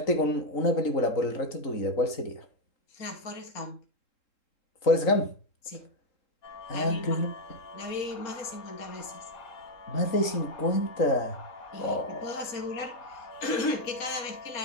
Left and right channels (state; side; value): late; right; 3.7 ms